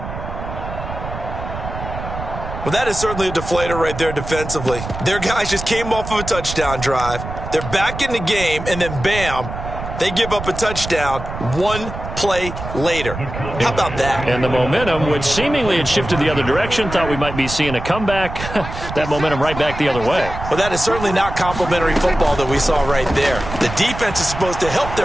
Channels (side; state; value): right; noise; rumble, 8 dB below the sound